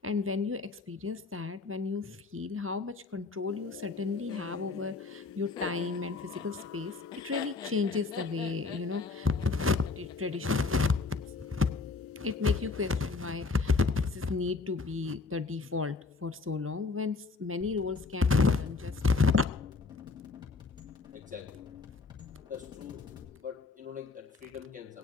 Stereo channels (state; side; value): quieter; right; 4.2 dB